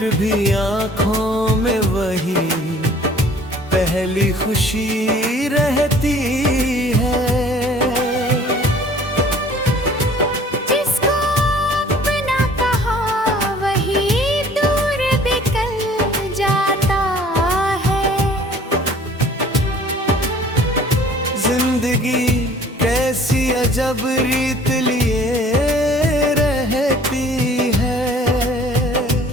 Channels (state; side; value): normal; both; correlation 0.52